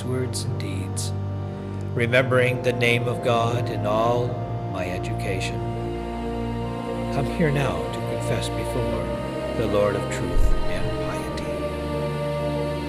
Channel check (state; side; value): identical; both; correlation 1.00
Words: words and deeds, remembering the name of God in all my education. Come here now to confess before the Lord of truth and piety.